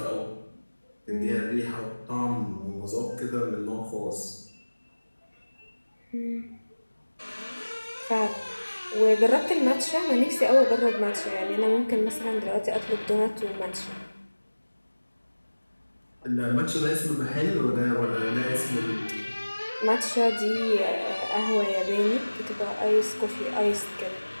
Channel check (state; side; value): inverted; both; correlation -1.00